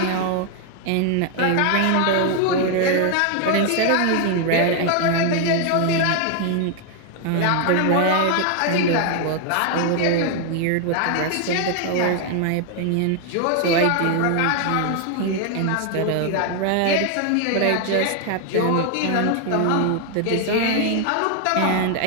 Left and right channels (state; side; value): different; both; correlation 0.00